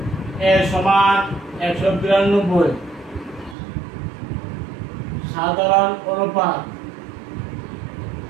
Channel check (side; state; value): left; drops out; at 3.6 s